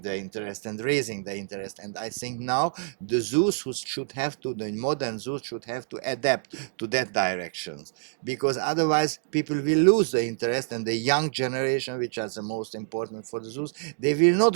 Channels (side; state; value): left; silent; digital silence